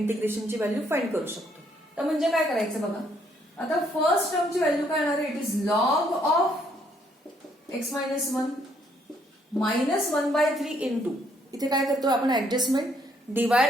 व्हॅल्यू फाइंड करू शकतो. तर म्हणजे काय करायचं बघा. आता फर्स्ट टर्मची व्हॅल्यू काय येणार आहे? It is log of x minus 1 minus 1/3 into, इथे काय करतो आपण adjustment,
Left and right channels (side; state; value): both; normal; correlation 0.69